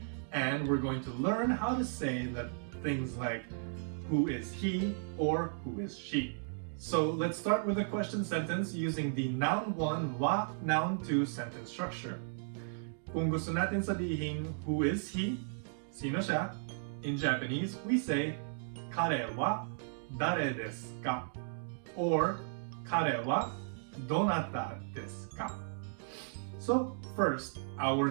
and we're going to learn how to say that things like who is he or who is she. So let's start with a question sentence using the noun 1 wa, noun 2 sentence structure. Kung gusto natin sabihin who is he, sino siya, in Japanese we say kare wa dare desu ka, or kare wa donata desu ka. So first, our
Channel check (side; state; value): left; silent; digital silence